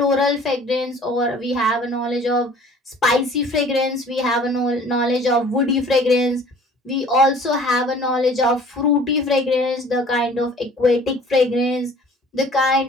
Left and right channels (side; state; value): both; normal; correlation 0.50